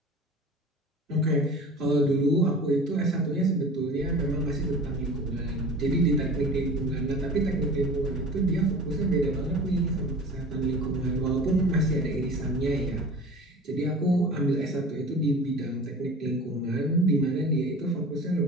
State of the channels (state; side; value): normal; both; correlation 0.39